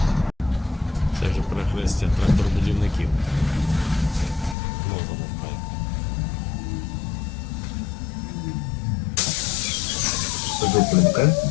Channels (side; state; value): right; drops out; at 4.5 s